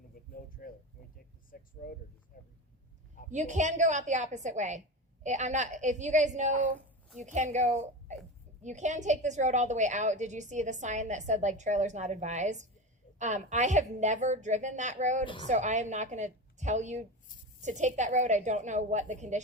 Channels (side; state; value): both; normal; correlation 0.24